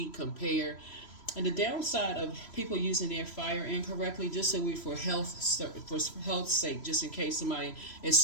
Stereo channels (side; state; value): right; late; 3.0 ms